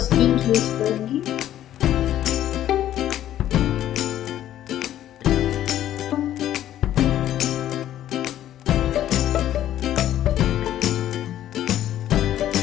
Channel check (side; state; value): right; quieter; 12.2 dB